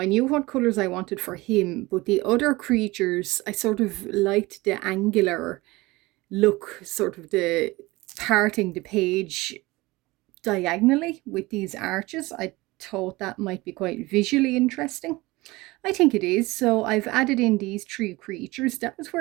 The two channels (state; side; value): quieter; left; 21.3 dB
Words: knew what colors I wanted for him, but the other creatures, I sort of liked the angular look, sort of the parting the page diagonally with these arches. I thought that might be quite visually interesting. I think it is. So I've added in these 3 creatures. That was